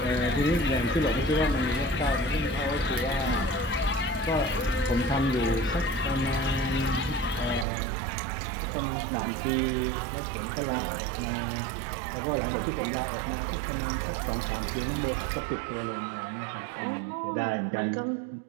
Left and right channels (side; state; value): left; drops out; at 7.7 s